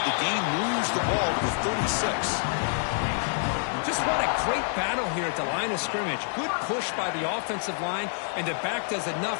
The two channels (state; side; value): silent; right; 60 dB below the other